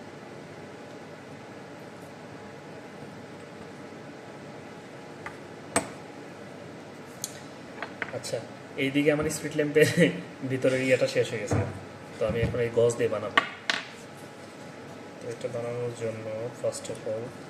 আচ্ছা, এইদিকে আমার স্পিড ল্যাম্পের ভিতরের ইয়েটা শেষ হয়ে গেছে, তো আমি এখন এই গজ দিয়ে বানাবো। তো এটা বানানোর জন্য ফার্স্ট অফ অল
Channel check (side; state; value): both; identical; correlation 1.00